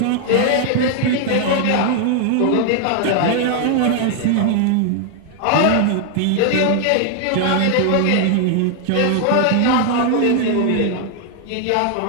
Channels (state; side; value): different; both; correlation 0.00